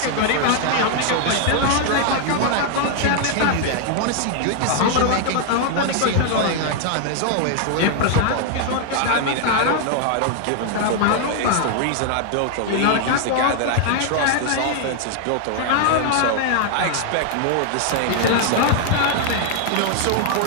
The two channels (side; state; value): both; different; correlation 0.00